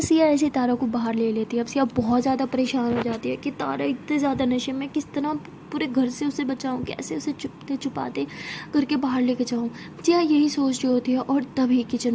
सिया ऐसे तारा को बाहर ले लेती है। अब सिया बहुत ज़्यादा परेशान हो जाती है कि तारा इतने ज़्यादा नशे में, किस तरह पूरे घर से उसे बचाऊं, कैसे उसे चुपते छुपाते करके बाहर लेके जाऊं। सिया यही सोच रही होती है, और तभी किचन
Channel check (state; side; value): identical; both; correlation 1.00